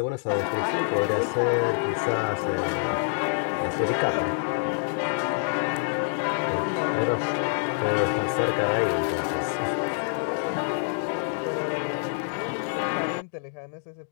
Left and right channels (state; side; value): silent; right; digital silence